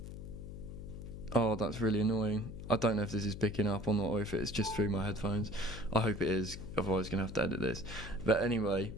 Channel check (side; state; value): left; noise; hum, 10 dB below the sound